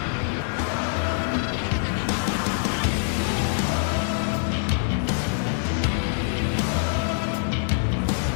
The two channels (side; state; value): right; silent; digital silence